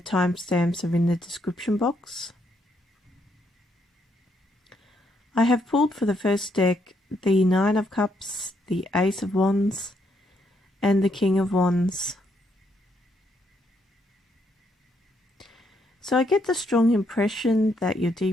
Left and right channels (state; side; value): normal; both; correlation 0.74